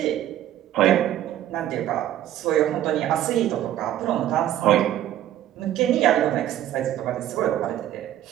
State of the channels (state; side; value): quieter; left; 12.2 dB